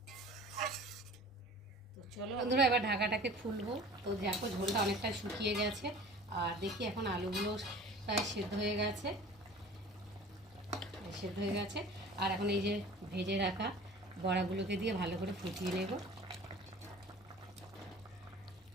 চলো বন্ধুরা এবার ঢাকাটাকে খুলবো। তো দেখো ঝোলটা অনেকটা শুকিয়ে গেছে, আর দেখি এখন আলুগুলো প্রায় সেদ্ধ হয়ে গেছে। আর এখন এই যে ভেজে রাখা বড়াগুলোকে দিয়ে ভালো করে ফুটিয়ে নেব।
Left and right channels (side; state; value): both; normal; correlation 0.44